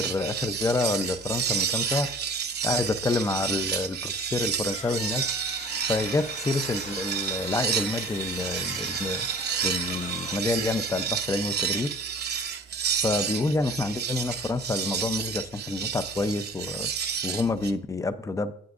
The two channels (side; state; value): both; normal; correlation 0.47